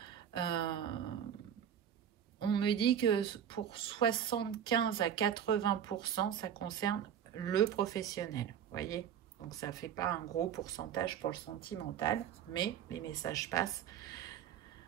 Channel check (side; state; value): left; quieter; 9.0 dB